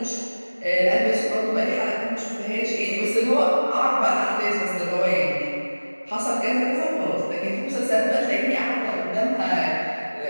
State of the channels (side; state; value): both; inverted; correlation -1.00